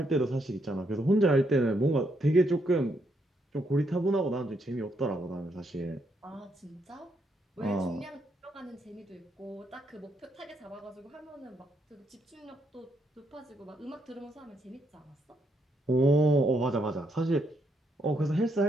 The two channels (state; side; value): normal; both; correlation 0.77